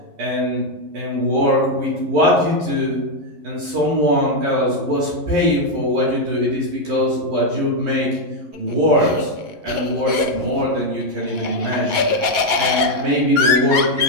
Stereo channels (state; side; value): late; left; 11 ms